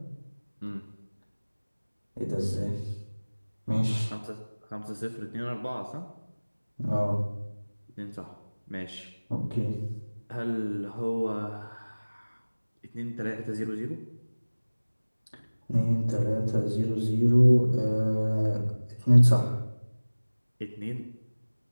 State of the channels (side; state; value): both; inverted; correlation -1.00